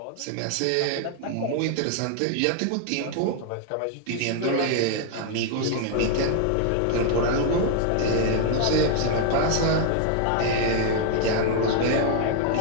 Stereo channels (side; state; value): both; different; correlation 0.00